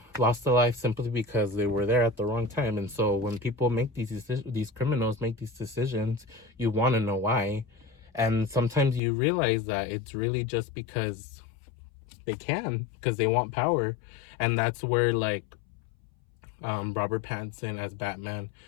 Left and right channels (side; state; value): right; drops out; at 9.0 s